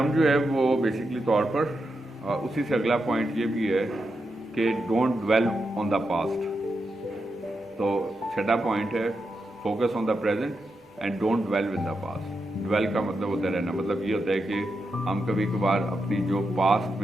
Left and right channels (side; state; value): both; normal; correlation 0.86